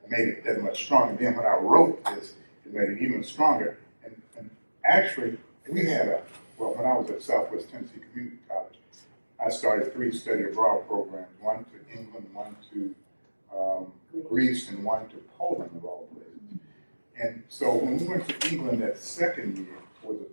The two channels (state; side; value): inverted; both; correlation -1.00